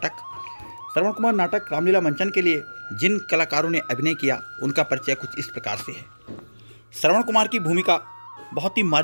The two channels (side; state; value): both; inverted; correlation -1.00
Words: श्रवण कुमार नाटक रामलीला मंचन के लिए जिन कलाकारों ने अभिनय किया उनका परिचय कुछ इस प्रकार से है। श्रवण कुमार की भूमिका बहुत ही